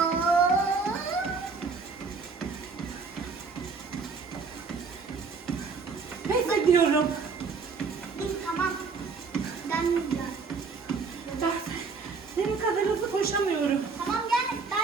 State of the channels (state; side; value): quieter; left; 4.8 dB